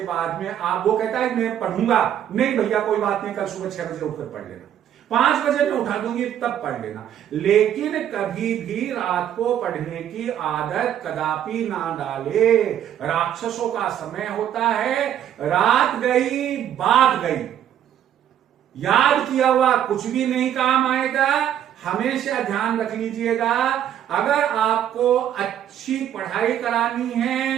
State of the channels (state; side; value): quieter; left; 10.4 dB